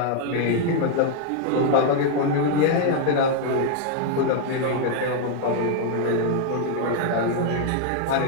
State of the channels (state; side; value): different; both; correlation 0.00